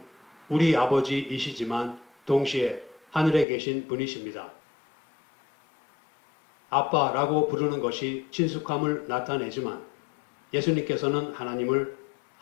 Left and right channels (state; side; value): drops out; right; at 3.5 s